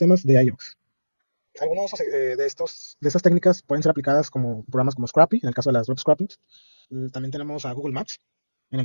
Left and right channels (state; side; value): inverted; both; correlation -1.00